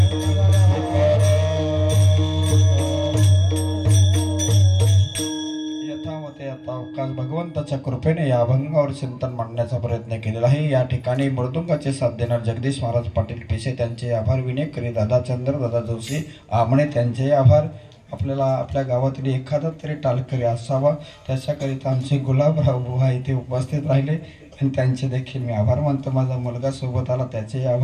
भगवंताच्या कृपेने या अभंगावर चिंतन मांडण्याचा प्रयत्न केलेला आहे. या ठिकाणी मृदुंगाचे साथ देणार जगदीश महाराज पाटील पेशे त्यांचे आभार. विनेकरी दादा चंद्र दादा जोशी आमणे त्यांचे आभार. आपल्याला आपल्या गावातील एखादा तरी टालकरी असावा त्याच्याकरिता आमचे गुलाबराव बुवा इथे उपस्थित राहिले आणि त्यांचे देखील मी आभार मानतो. माझा मुलगा सोबत आला त्याचे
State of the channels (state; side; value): identical; both; correlation 1.00